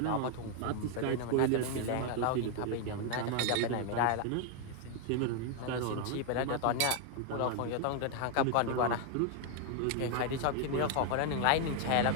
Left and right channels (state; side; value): different; both; correlation 0.00